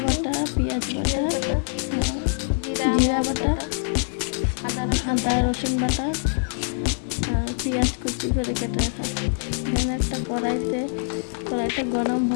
বাটা, পেঁয়াজ বাটা, জিরা বাটা, আদা রসুন বাটা, আর পেঁয়াজ কুচি করে কেটে রাখা। এখানে একটা কড়াইটা গরম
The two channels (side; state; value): right; silent; 62 dB below the other